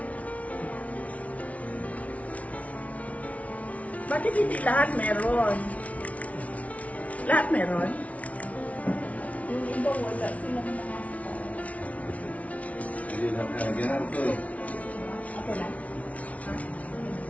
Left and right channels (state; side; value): late; right; 0.067 ms